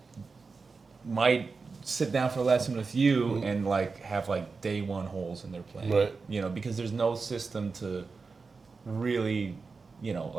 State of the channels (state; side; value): quieter; left; 4.5 dB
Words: might sit down for a lesson with you and, like, have, like, day one holes in their playing. Right. Because there's no system to really,